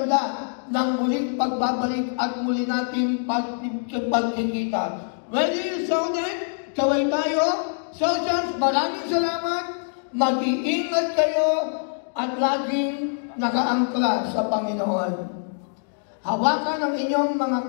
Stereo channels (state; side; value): silent; right; digital silence